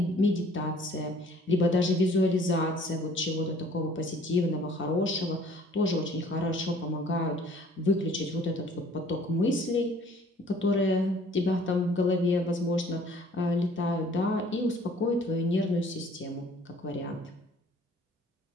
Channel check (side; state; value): both; normal; correlation 0.55